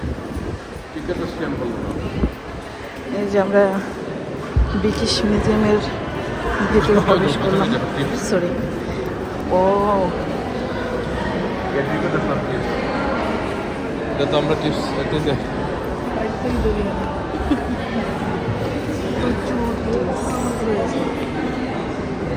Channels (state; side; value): identical; both; correlation 1.00